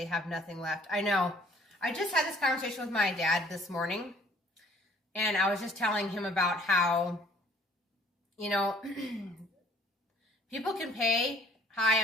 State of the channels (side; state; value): both; normal; correlation 0.57